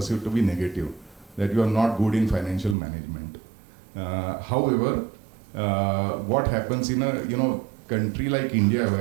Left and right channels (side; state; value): left; drops out; at 2.8 s